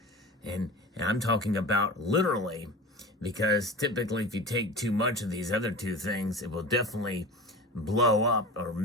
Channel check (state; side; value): normal; both; correlation 0.33